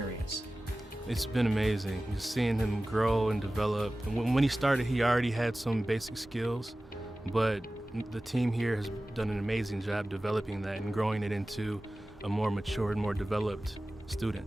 It's been amazing, just seeing him grow and develop. And when he started, he already had some basic skills, but the team here has done an amazing job developing that and growing it into a more mature and more developed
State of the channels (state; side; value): normal; both; correlation 0.96